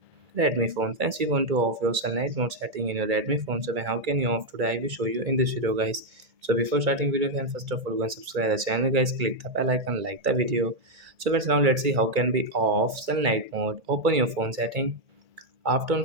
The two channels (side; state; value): left; late; 1.8 ms